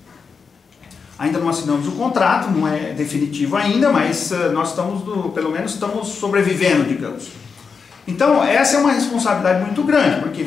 Ainda não assinamos o contrato, não é definitivo ainda, mas nós pelo menos estamos sobrevivendo, digamos. Então, essa é uma responsabilidade muito grande, porque,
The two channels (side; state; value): right; quieter; 5.5 dB